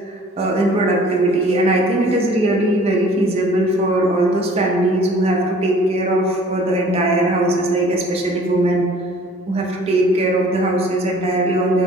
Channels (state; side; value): normal; both; correlation 0.51